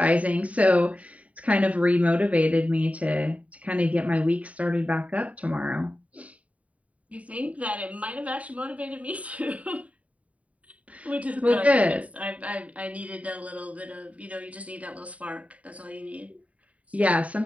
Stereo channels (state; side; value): late; left; 0.068 ms